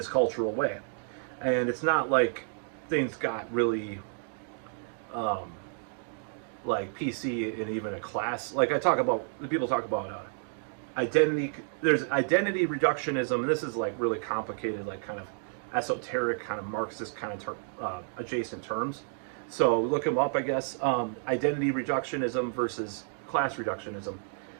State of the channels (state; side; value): silent; left; 57 dB below the other